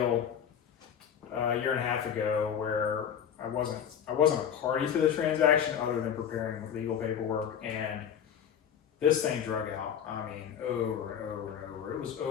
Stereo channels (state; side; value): quieter; right; 8.5 dB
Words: a year and a half ago where I wasn't a party to the transaction other than preparing legal paperwork, and this thing drug out. I mean, over and over and over. It was